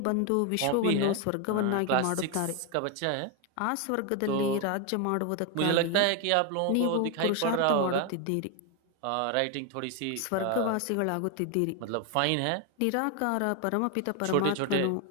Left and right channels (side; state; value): both; different; correlation 0.01